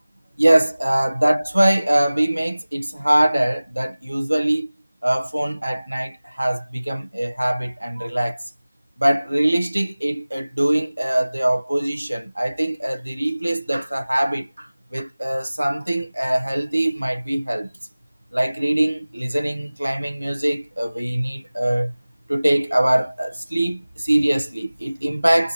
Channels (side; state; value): both; inverted; correlation -0.98